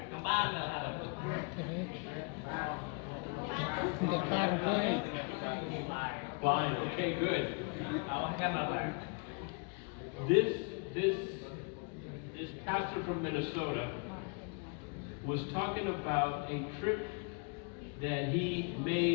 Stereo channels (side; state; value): right; quieter; 35.7 dB